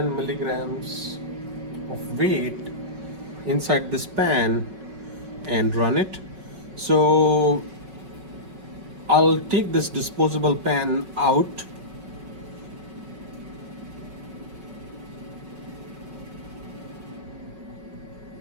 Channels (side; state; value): left; late; 5.3 ms